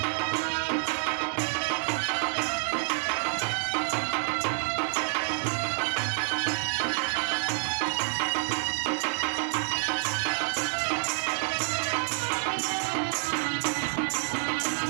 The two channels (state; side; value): silent; left; digital silence